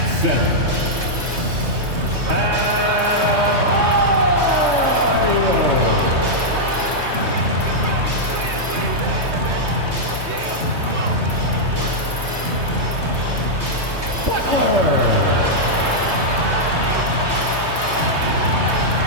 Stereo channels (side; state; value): left; late; 3.2 ms